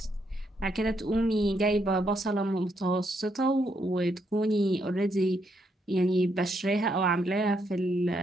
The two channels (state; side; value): normal; both; correlation 0.76